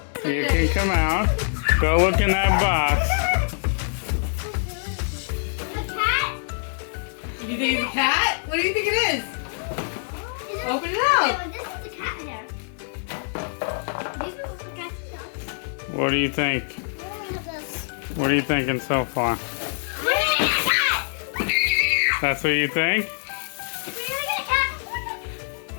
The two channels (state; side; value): silent; right; digital silence